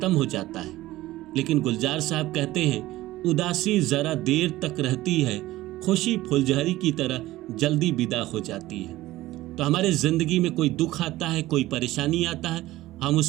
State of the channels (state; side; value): quieter; left; 16.8 dB